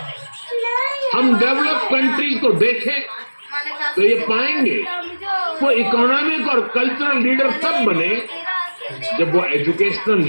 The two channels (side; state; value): both; inverted; correlation -1.00